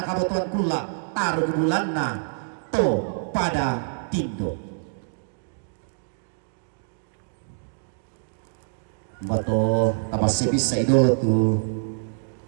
kabotuan kula taruh bulan na to pada tindo bato tapas sebisa idolo tu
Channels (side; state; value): left; silent; digital silence